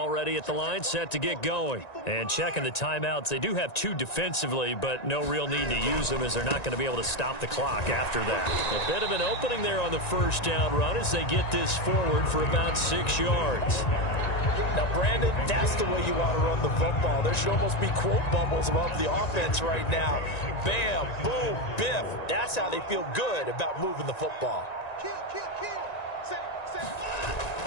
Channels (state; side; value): late; right; 1.9 ms